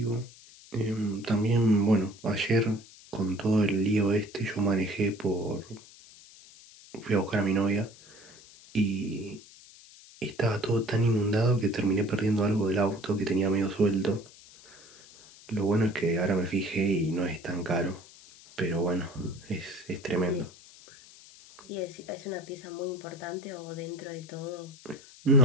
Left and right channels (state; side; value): noise; left; hiss, 22 dB below the sound